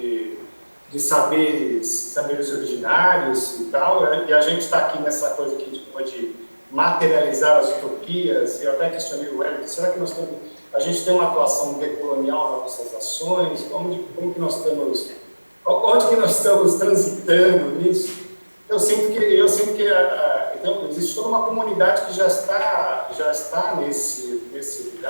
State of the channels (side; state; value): both; inverted; correlation -1.00